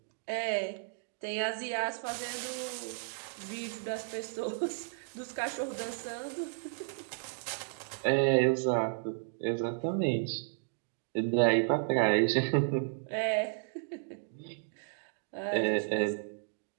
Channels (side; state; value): left; silent; digital silence